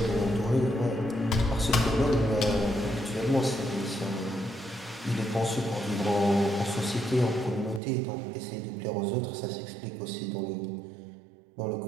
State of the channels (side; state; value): left; drops out; at 7.8 s